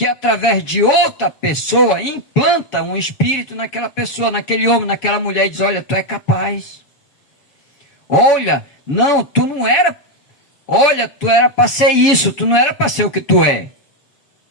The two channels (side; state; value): right; late; 7.0 ms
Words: através de outra pessoa implanta um espírito naquela pessoa, naquele homem, naquela mulher e diz: olha, tu é capaz. Olha, não, tu não era. Olha, tu era para ser isso, tu não era para ser o que tu é.